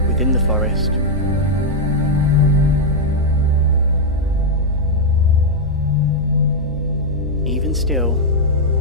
within the forest. Even still,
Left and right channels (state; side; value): normal; both; correlation -0.02